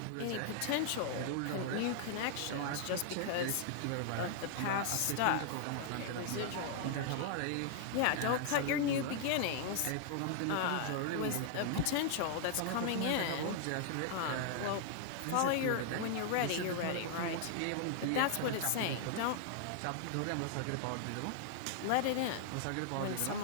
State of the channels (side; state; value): both; different; correlation 0.00